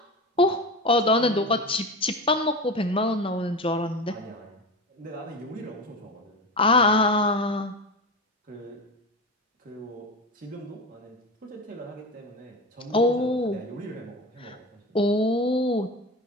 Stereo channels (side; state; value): both; normal; correlation 0.25